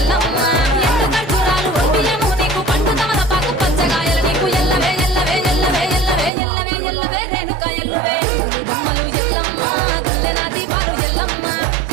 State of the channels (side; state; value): left; drops out; at 6.3 s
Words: ఎండు ఖర్జూరాలు ఒంటియము నీకు పండు తమలపాకు పచ్చగాయలు నీకు ఎల్లవే ఎల్లవే ఎల్లవే ఎల్లవే ఎల్లవే ఎల్లవే రేణుక ఎల్లువే బొమ్మలు ఎల్లమ్మ గుల్లెన దీపాలు ఎల్లమ్మ